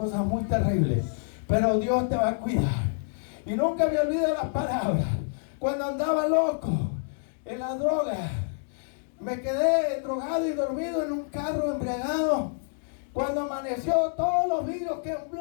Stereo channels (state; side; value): silent; right; digital silence